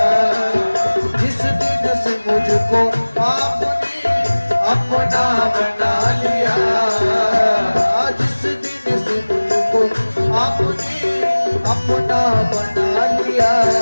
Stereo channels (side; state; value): both; inverted; correlation -1.00